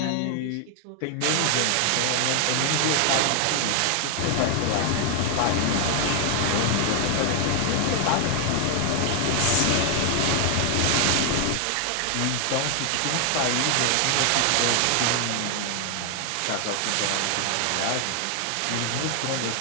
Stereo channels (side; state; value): both; different; correlation 0.00